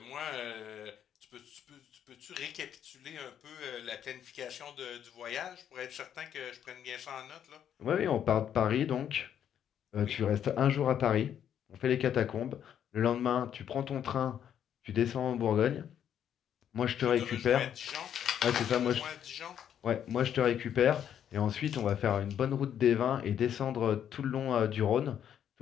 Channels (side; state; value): right; quieter; 9.4 dB